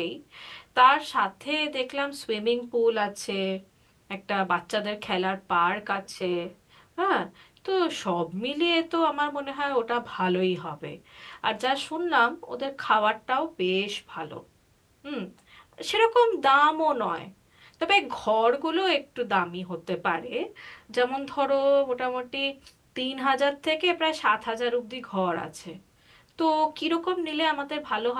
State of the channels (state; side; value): identical; both; correlation 1.00